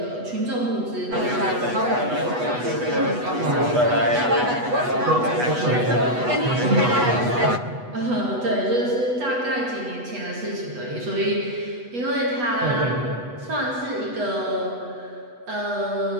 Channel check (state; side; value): late; left; 8.1 ms